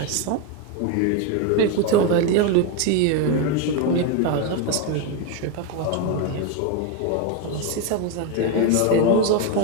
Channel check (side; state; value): both; different; correlation 0.02